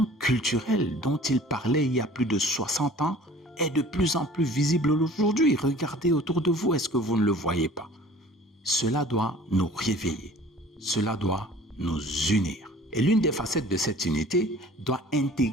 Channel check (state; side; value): normal; both; correlation 0.48